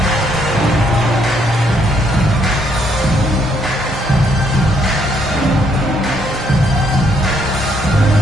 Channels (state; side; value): normal; both; correlation 0.71